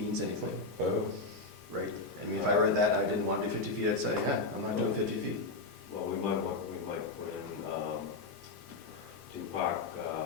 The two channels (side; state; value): right; quieter; 3.5 dB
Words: anything, Oh, right? I mean, if I read that, and I didn't want to do 50 feet, I'd say, yeah, I'm not doing 50 feet. Well, we might put in, to park,